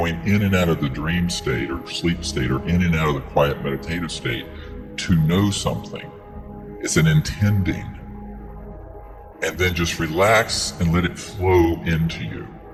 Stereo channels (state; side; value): identical; both; correlation 1.00